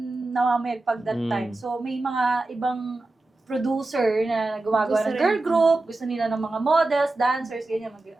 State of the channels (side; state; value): left; quieter; 3.0 dB